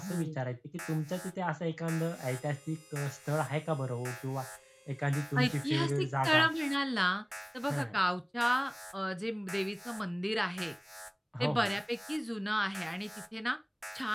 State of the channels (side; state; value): both; identical; correlation 1.00